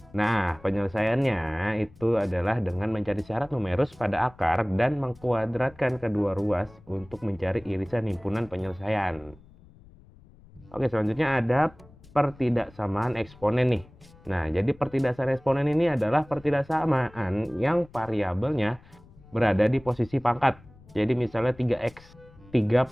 Nah, penyelesaiannya itu adalah dengan mencari syarat numerus pada akar dan mengkuadratkan kedua ruas untuk mencari irisan himpunan penyelesaian. Oke, selanjutnya ada pertidaksamaan eksponen nih. Nah, jadi pertidaksamaan eksponen ini adalah pertidaksamaan yang variabelnya berada di posisi pangkat. Jadi misalnya 3x, 3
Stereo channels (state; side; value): noise; left; rumble, 24 dB below the sound